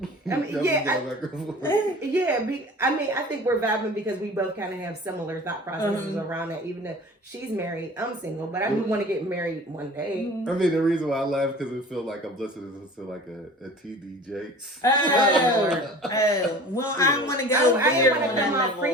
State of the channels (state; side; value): normal; both; correlation 0.43